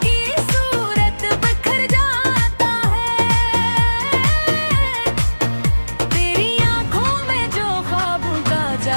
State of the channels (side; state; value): both; inverted; correlation -1.00